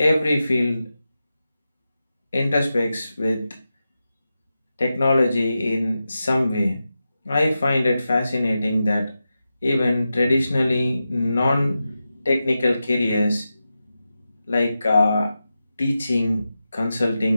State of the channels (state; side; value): inverted; both; correlation -0.91